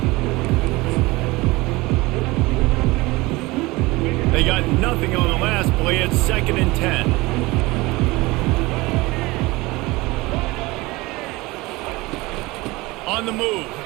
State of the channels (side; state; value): left; quieter; 21.8 dB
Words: They got nothing on the last play. It's 2nd and 10. On the move,